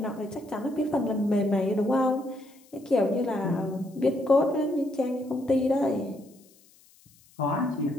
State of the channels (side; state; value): left; noise; hiss, 29 dB below the sound